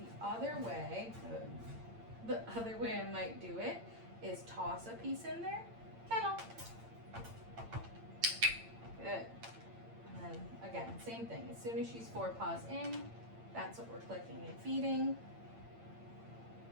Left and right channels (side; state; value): left; late; 8.8 ms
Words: other way I might do it is toss a piece in there. Kennel. Good. And then again, same thing. As soon as she's 4 paws in, that's what we're clicking and feeding.